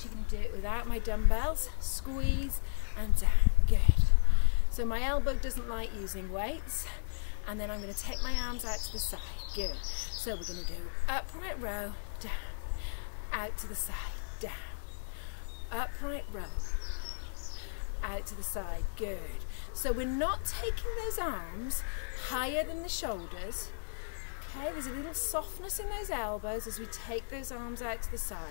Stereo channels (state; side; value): silent; right; 55 dB below the other